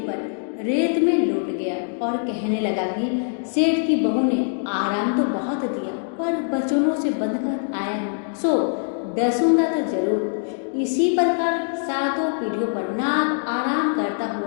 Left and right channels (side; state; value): right; silent; digital silence